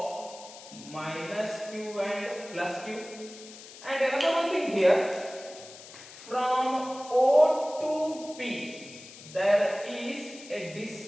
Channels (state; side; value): noise; left; hiss, 17 dB below the sound